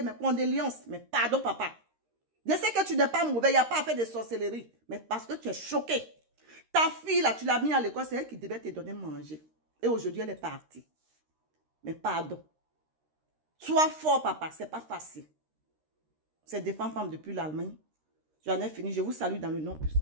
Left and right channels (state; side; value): late; left; 13 ms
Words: mes condoléances. Mais pardon, papa. Je sais que tu n'es pas mauvais. Il n'y a pas à faire de sorcellerie. Mais parce que tu es choqué. Ta fille, là, tu l'as mis à l'école. C'est elle qui devait te donner manger. Et aujourd'hui, elle est partie. Mais pardon. Sois fort, papa. C'est pas facile. C'est des femmes depuis l'Allemagne. J'en ai fini. Je vous salue dans le nom